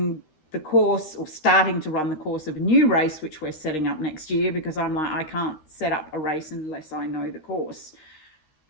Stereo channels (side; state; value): right; late; 13 ms